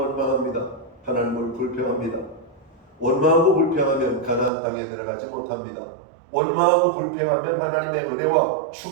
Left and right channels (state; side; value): drops out; left; at 4.5 s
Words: 하나님을 불평합니다. 원망하고 불평하면 가나안 땅에 들어가지 못합니다. 원망하고 불평하면 하나님의 은혜와